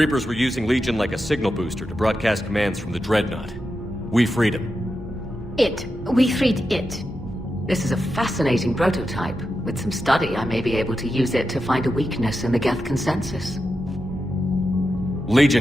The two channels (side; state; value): both; normal; correlation 0.89